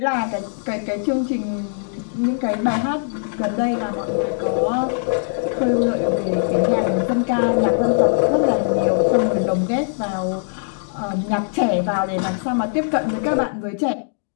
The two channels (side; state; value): right; silent; digital silence